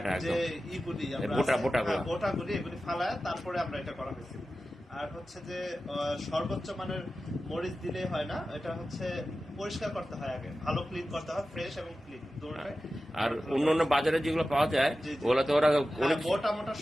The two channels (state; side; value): normal; both; correlation 0.94